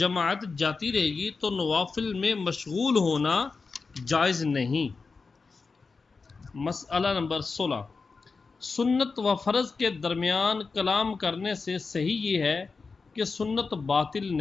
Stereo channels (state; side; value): quieter; right; 4.5 dB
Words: جاتی رہے گی تو نوافل میں مشغول ہونا جائز نہیں۔ مسئلہ نمبر 16، سنت و فرض کے درمیان کلام کرنے سے صحیح یہ ہے کہ سنت باطل